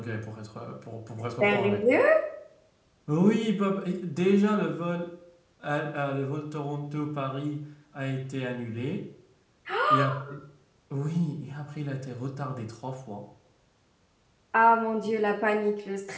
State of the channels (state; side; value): identical; both; correlation 1.00